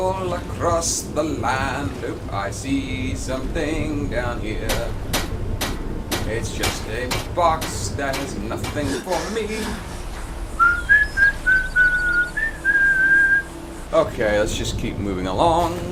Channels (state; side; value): identical; both; correlation 1.00